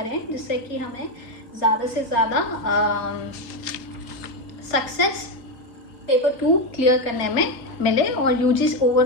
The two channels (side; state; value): right; late; 4.3 ms